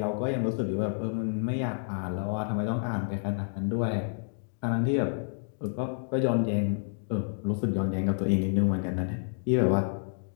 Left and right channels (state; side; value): silent; right; digital silence